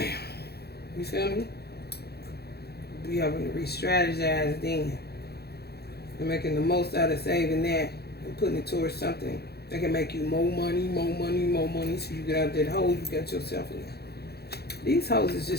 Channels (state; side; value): late; right; 0.47 ms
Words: You feel me? We having to re-strategize then. And making the most out of saving that and putting it towards something that can make you more money, so you get out that hole you got yourself in. These hoes is